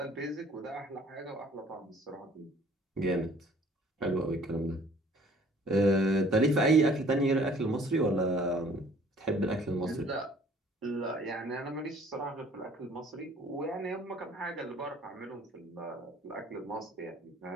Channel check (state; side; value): normal; both; correlation 0.55